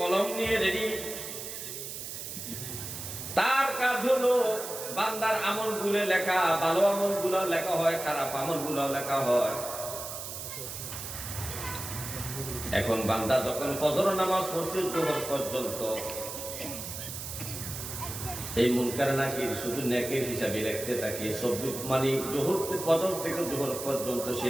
নিয়ে রেডি। তার কাজ হলো বান্দার আমলগুলো লেখা, ভালো আমলগুলো লেখা হয়, খারাপ আমলগুলো লেখা হয়। এখন বান্দা যখন ফজর নামাজ পড়ছে জোহর পর্যন্ত, এই মুনকার নাকির শুধু নেকের হিসাবে রাখতে থাকে। মানে জোহর ফজর থেকে জোহর পর্যন্ত সে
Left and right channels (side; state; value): right; noise; hiss, 8 dB below the sound